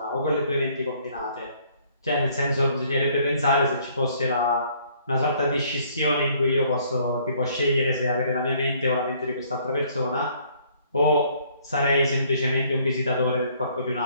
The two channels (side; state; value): both; inverted; correlation -0.62